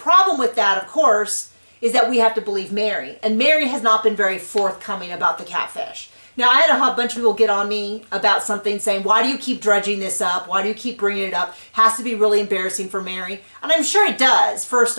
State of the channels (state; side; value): inverted; both; correlation -1.00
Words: with that, of course, is that we have to believe Mary. And Mary has not been very forthcoming about the Catfish. Now, I had a bunch of people get on me about something saying, why do you keep dredging this up? Why do you keep bringing it up? Has to be really embarrassing for Mary. And I'm sure it does, first